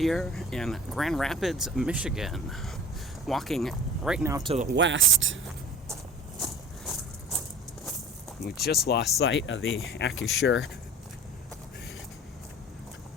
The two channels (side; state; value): both; normal; correlation 0.39